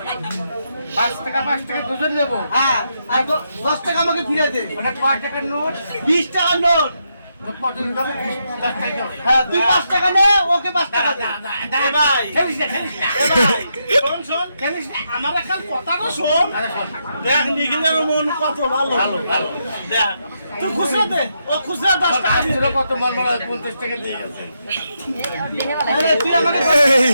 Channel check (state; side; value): inverted; both; correlation -0.81